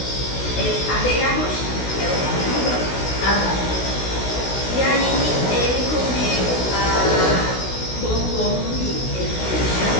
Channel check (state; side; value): late; right; 16 ms